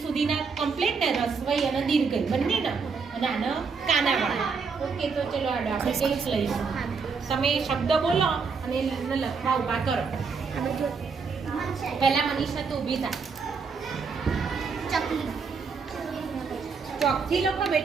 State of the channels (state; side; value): quieter; left; 5.2 dB